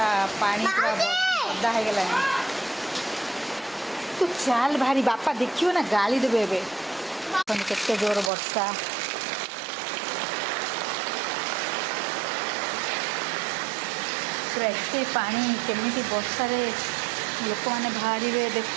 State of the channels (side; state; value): left; drops out; at 8.3 s